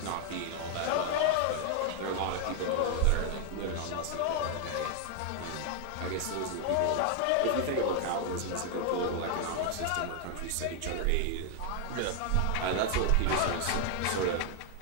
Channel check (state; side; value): different; both; correlation 0.00